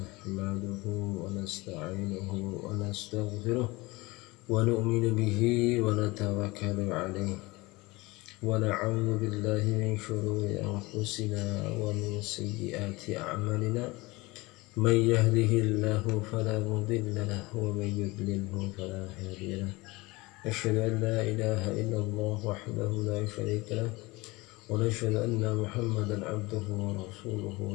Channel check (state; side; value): quieter; right; 22.7 dB